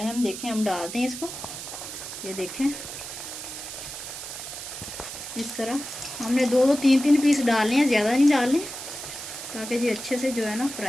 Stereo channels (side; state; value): right; noise; hiss, 9 dB below the sound